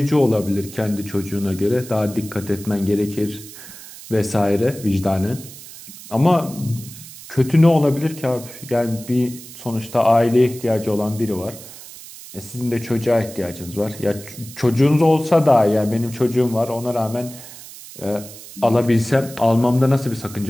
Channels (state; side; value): noise; right; hiss, 16 dB below the sound